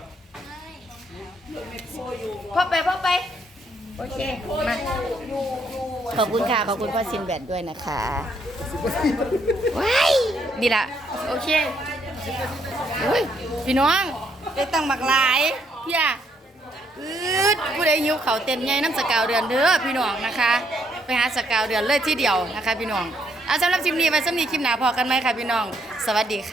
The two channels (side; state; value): both; normal; correlation 0.72